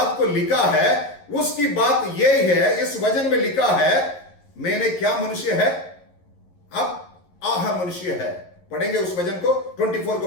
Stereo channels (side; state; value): right; late; 11 ms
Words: को लिखा है। उसकी बात यही है, इस वचन में लिखा है, मैंने क्या मनुष्य है, अब आह मनुष्य है। पढ़ेंगे उस वचन को, 24 को